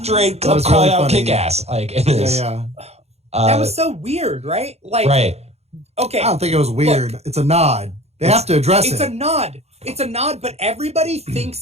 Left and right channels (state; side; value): late; left; 0.31 ms